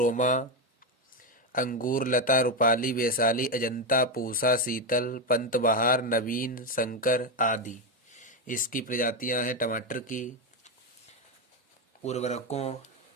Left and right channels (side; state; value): both; normal; correlation 0.09